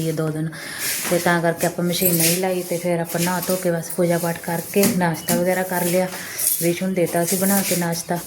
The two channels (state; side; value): identical; both; correlation 1.00